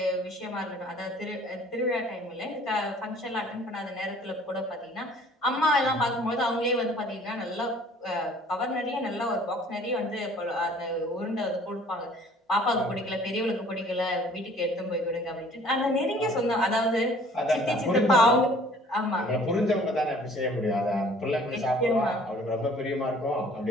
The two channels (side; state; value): both; normal; correlation 0.53